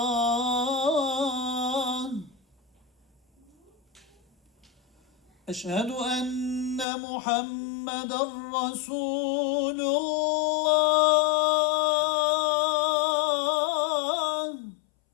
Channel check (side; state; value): right; drops out; at 6.9 s